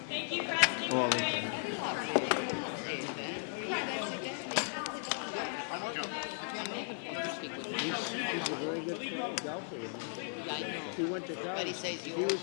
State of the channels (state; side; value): silent; right; 54 dB below the other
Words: Thank you, President. Oh, he's a very good golfer. Yeah, I know. He went to college. But he says you He was-